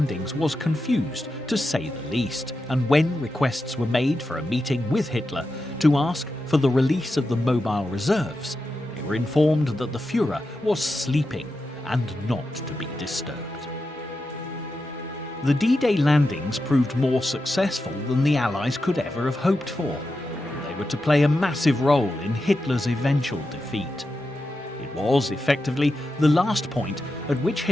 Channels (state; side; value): normal; both; correlation 0.89